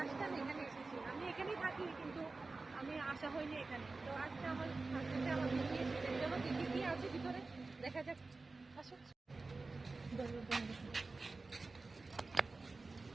টাইম এখানে এসেছি। আমি এখানেই থাকি, কিন্তু আমি আসা হয়নি এখানে। তো আজকে আমার হাজবেন্ডে আমার নিয়ে এসেছে। চলো দেখি কি আছে ভিতরে, দেখা যাক। আসো।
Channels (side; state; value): left; quieter; 3.7 dB